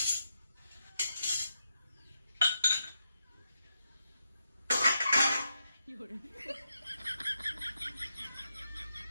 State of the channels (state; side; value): inverted; both; correlation -0.84